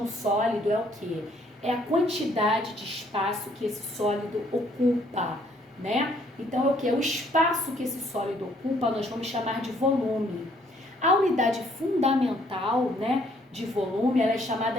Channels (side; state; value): both; normal; correlation 0.65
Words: sólido é o quê? É a quantidade de espaço que esse sólido ocupa, né? Então é o que? O espaço que esse sólido ocupa nós vamos chamar de volume. A unidade fundamental, né, de volume, ela é